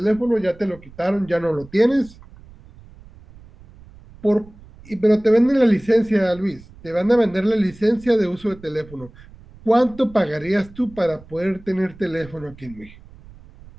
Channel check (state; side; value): noise; right; rumble, 21 dB below the sound